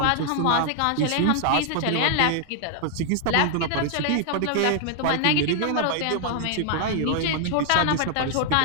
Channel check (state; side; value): different; both; correlation 0.00